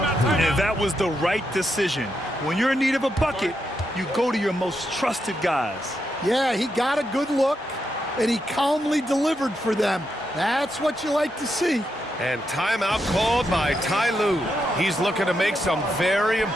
that was the right decision. When you're in need of a bucket, you go to your most trusted guys. Yeah, he got a good look, and he calmly delivered for them. That's what you like to see. And timeout called by Ty Lue. He's looking to make some very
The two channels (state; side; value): normal; both; correlation 0.83